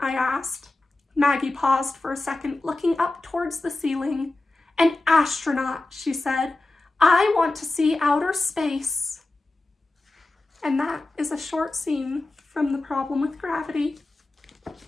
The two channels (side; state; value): right; quieter; 3.0 dB